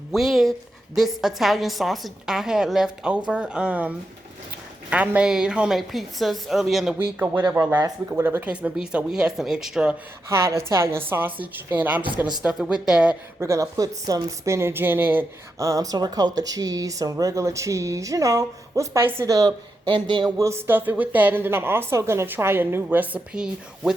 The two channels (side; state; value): both; normal; correlation 0.86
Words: with this Italian sausage I had left over. I made homemade pizzas early in the week or whatever, or last week or whatever the case may be. So we had some extra hot Italian sausage, and I'm just gonna stuff it with that. We're gonna put some spinach in it, some ricotta cheese, some regular cheese. We'll spice it up, and then we'll stuff it with that. And then I'm also gonna try a new recipe